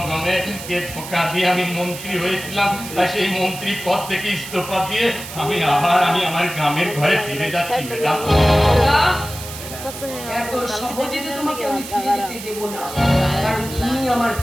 ধোঁকা দিয়ে আমি মন্ত্রী হয়েছিলাম, তাই সেই মন্ত্রী পদ থেকে ইস্তফা দিয়ে আমি আমার গ্রামের ঘরে ফিরে যাচ্ছি ম্যাডাম। এত সহজে তো তোমাকে আমি ফিরে যেতে দেব না, কারণ তুমি আমার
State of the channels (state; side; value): noise; right; hiss, 11 dB below the sound